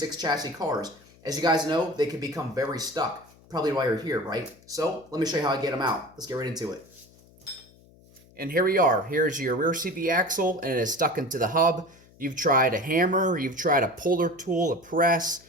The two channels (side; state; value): left; noise; hum, 27 dB below the sound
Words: chassis cars. As you guys know, they can become very stuck. Probably why you're here, right? So let me show you how I get them out. Let's get right into it. And here we are. Here's your rear CV axle and it is stuck into the hub. You've tried a hammer, you've tried a puller tool, a press,